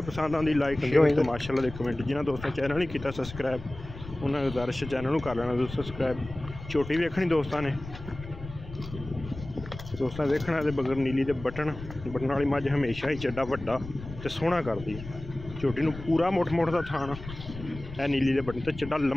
पसंद आती लाइक शेयर तो माशाल्लाह दे कमेंट। जिन्होंने दोस्तों चैनल नहीं किया सबसक्राइब उन्होंने गुजारिश चैनल को कर लेना दोस्तों सबसक्राइब। छोटी वेखनी दोस्तों ने देखना तो बगैर नीली के बटन वाली मझ हमेशा ही चड्डा वड्डा तो सोहना करती है। छोटी नूं पूरा मुठ का थान है नीली के बटन तो चड्डा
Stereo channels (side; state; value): left; noise; rumble, 13 dB below the sound